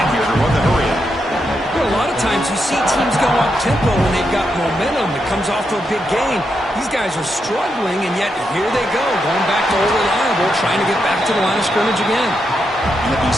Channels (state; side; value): normal; both; correlation 0.83